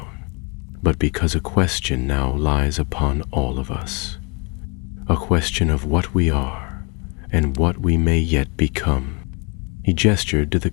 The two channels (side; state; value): right; quieter; 31.5 dB